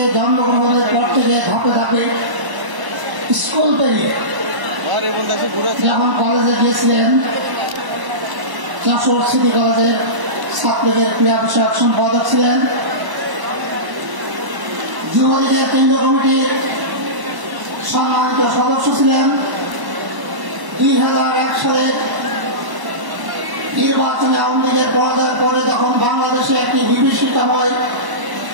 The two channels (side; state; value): left; late; 1.0 ms